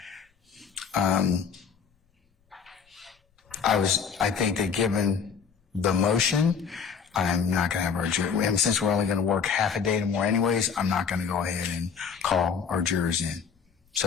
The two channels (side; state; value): right; quieter; 6.5 dB